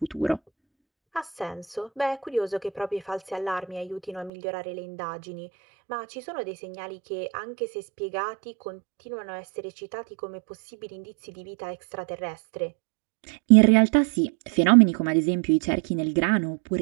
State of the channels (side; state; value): left; drops out; at 4.3 s